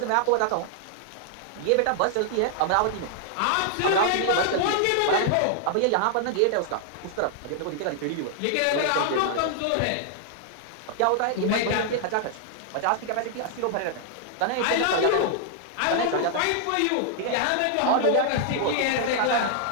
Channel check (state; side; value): different; both; correlation -0.01